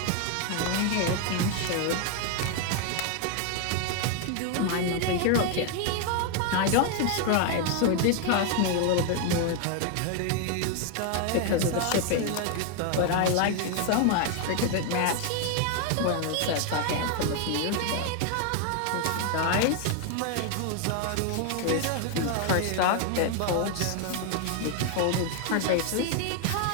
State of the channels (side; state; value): both; different; correlation 0.00